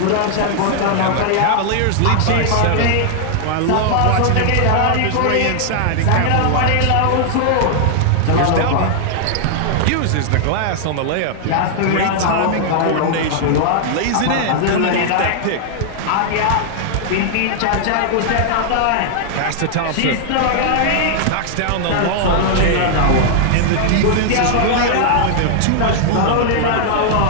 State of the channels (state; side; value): different; both; correlation -0.01